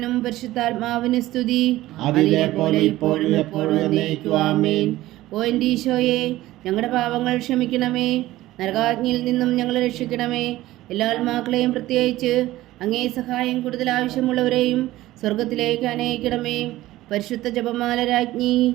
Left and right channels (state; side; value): quieter; left; 16.3 dB